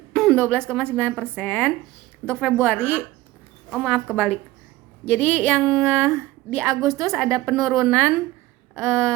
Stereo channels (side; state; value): left; quieter; 17.8 dB